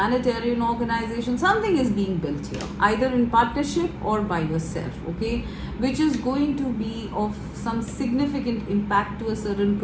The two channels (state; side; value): identical; both; correlation 1.00